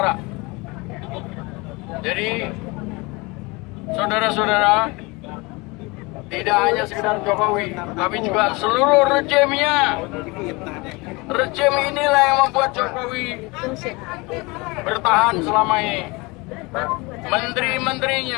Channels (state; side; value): quieter; right; 25.6 dB